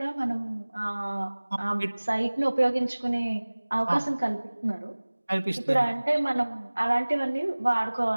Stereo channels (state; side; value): inverted; both; correlation -1.00